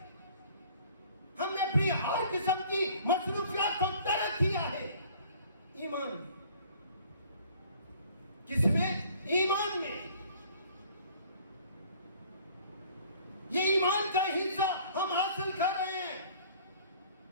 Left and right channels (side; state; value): both; inverted; correlation -0.53